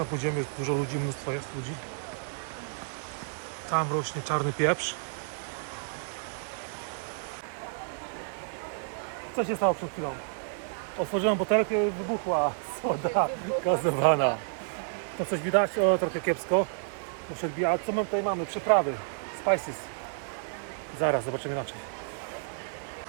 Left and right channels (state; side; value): silent; left; 58 dB below the other